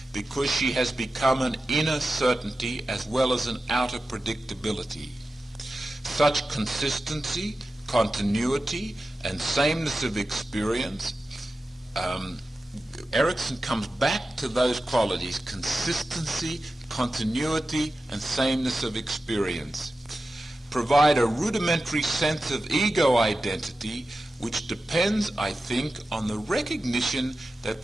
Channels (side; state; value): both; normal; correlation 0.93